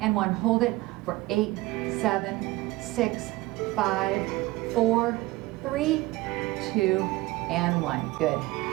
1. Hold it for 8, 7, 6, 5, 4, 3, 2, and 1. Good.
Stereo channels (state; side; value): quieter; left; 19.6 dB